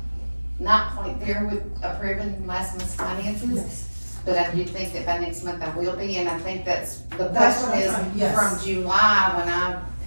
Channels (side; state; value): both; inverted; correlation -1.00